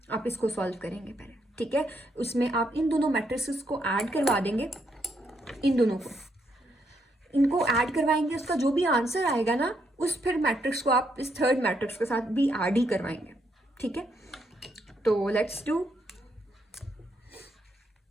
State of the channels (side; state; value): both; normal; correlation 0.76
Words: आप इसको सॉल्व करेंगे पहले। ठीक है, उसमें आप इन दोनों मैट्रिसेस को ऐड करवा देंगे, इन दोनों को इनको ऐड करवाएंगे। उसका जो भी आंसर आएगा ना उस फिर मैट्रिक्स को आप इस थर्ड मैट्रिक्स के साथ भी ऐड ही करवाएंगे। ठीक है, तो लेट्स डू